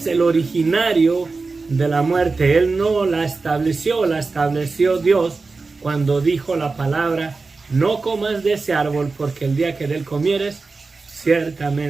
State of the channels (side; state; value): left; quieter; 4.0 dB